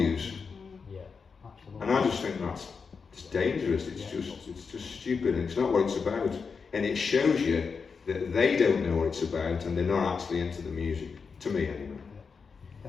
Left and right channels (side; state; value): right; quieter; 5.4 dB